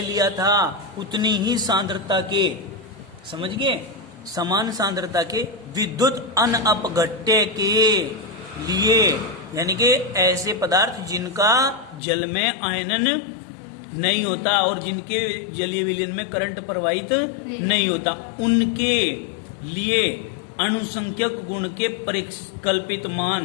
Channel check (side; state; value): right; drops out; at 12.0 s